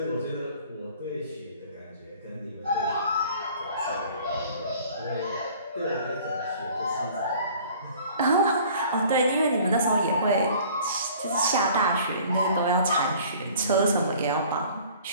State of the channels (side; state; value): both; inverted; correlation -0.50